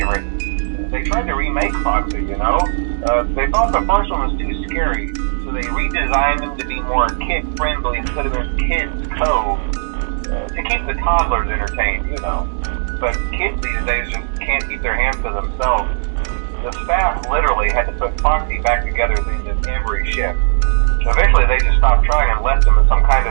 They tried to remake Foxy, you know? They thought the first one was too scary, so they redesigned him to be more kid-friendly instead of his Kids Cove. To keep the toddlers entertained, you know. But kids these days just can't keep their hands to themselves. The staff literally had to put Foxy back together at the end of every shift. Eventually they just stopped trying and left him as some kind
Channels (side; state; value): left; silent; digital silence